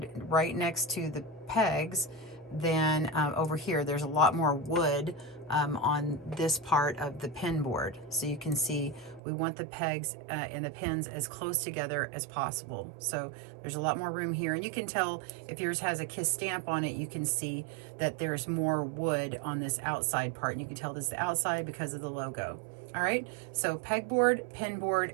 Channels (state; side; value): drops out; left; at 9.2 s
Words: right next to the pegs than over here. There's a lot more wood on this part of the pin board. So you can see we want the pegs and the pins as close together as possible. So there's a lot more room here, and you can tell if yours has a kiss stamp on it, you can see that there's more wood on this outside part, and you can tell this is the outside because of the logo. All right, so pegboard, pin board,